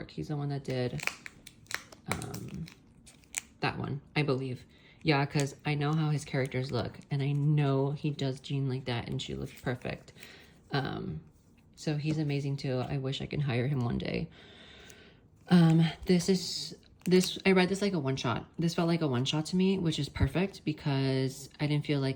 He's the one that did that one, I believe. Yeah, because I know how his characters look, and I know he does Jean like that, and she looks perfect. So he's amazing too. I wish I could hire him one day. I read this like a one-shot. This felt like a one-shot to me, which is perfect because I didn't feel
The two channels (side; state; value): both; identical; correlation 1.00